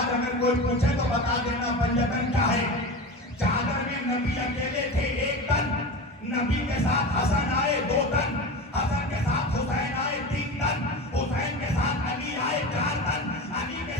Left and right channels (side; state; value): both; normal; correlation 0.27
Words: اگر کوئی پوچھے تو بتا دینا پنجتن کیا ہے۔ چادر میں نبی اکیلے تھے 1 تن، نبی کے ساتھ حسن آئے 2 تن، حسن کے ساتھ حسین آئے 3 تن، حسین کے ساتھ علی آئے 4 تن، علی کے